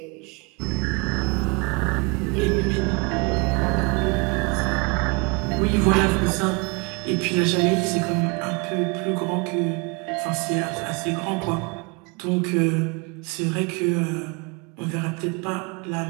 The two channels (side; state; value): left; quieter; 29.8 dB